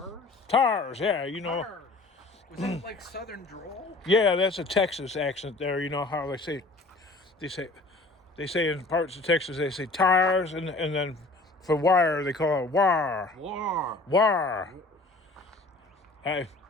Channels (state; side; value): quieter; right; 3.1 dB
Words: Tires, yeah, you know. Tars. Was that like Southern drawl? Yeah, that's a Texas accent there. You know how they say in parts of Texas they say tires and then for wire they call it war. War. War. Dang.